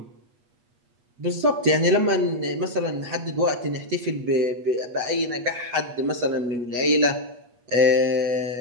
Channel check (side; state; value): left; late; 8.3 ms